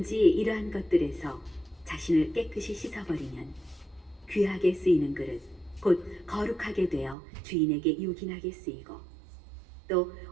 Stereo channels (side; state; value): left; drops out; at 7.2 s